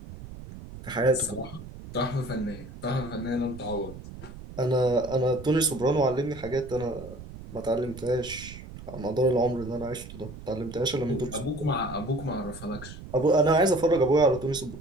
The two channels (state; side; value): noise; right; rumble, 13 dB below the sound